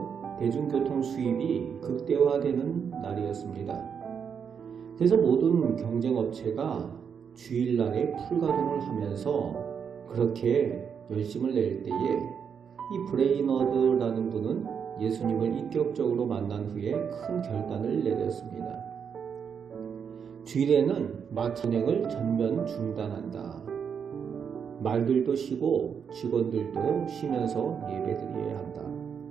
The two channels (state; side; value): quieter; left; 7.0 dB